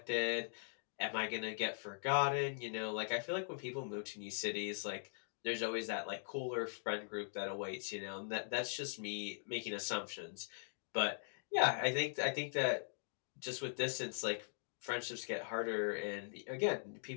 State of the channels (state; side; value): silent; right; digital silence